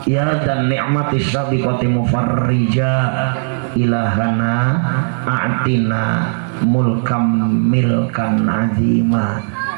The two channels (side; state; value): left; silent; digital silence